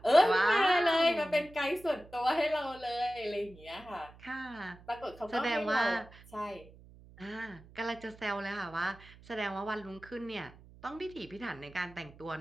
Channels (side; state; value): right; noise; hum, 22 dB below the sound